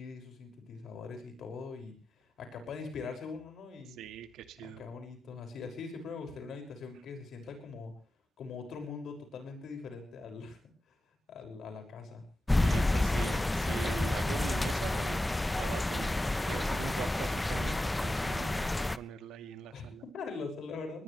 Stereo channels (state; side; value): normal; both; correlation 0.93